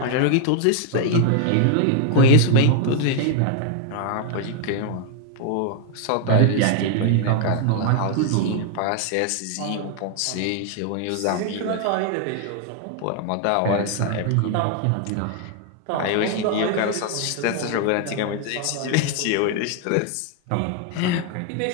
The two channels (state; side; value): different; both; correlation 0.00